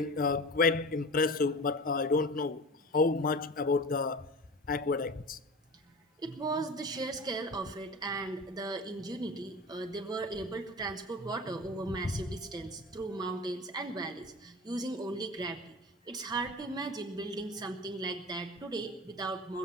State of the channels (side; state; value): both; normal; correlation 0.34